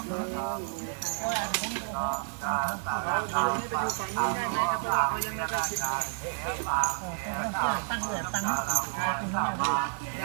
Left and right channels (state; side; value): silent; left; digital silence